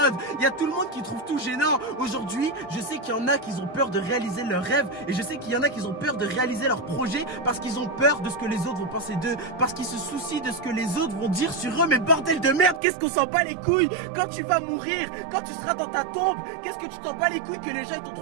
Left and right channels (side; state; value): left; drops out; at 12.8 s